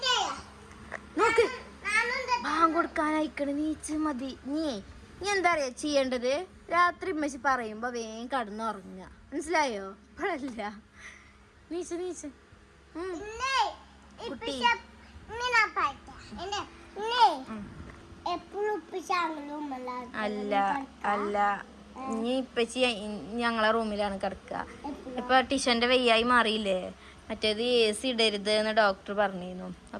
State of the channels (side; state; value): both; identical; correlation 1.00